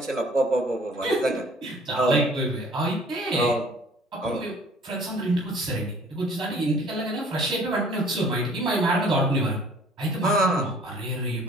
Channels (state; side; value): normal; both; correlation 0.53